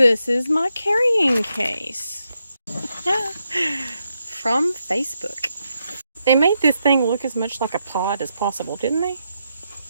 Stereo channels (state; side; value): inverted; both; correlation -0.83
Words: is my carrying case from Facebook. They made this thing look as much like a pod as possible, didn't they?